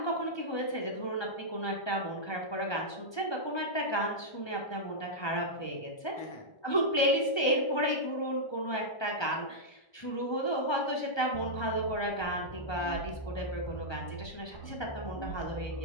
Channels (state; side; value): late; right; 1.2 ms